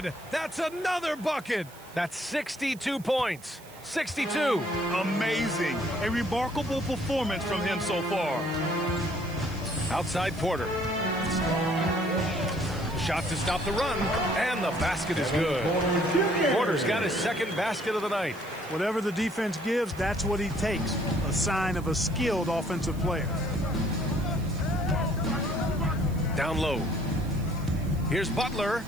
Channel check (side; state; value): right; noise; hiss, 22 dB below the sound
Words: That's another bucket. That's 62 points. 62. Amazing. A remarkable performance from him so far. Outside Porter. Shot to stop the run, and the basket is good. Porter's got his 2nd basket of the night. Whatever the defense gives, that's what he takes. A sign of a skilled offensive player. Down low. Here's Butler.